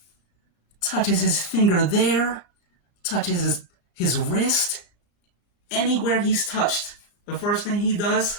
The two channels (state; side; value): late; right; 34 ms